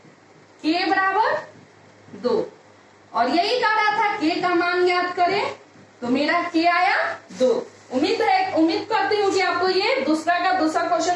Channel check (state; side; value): identical; both; correlation 1.00